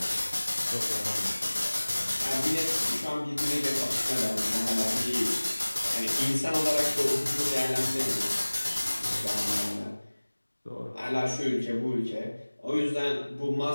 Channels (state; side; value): inverted; both; correlation -1.00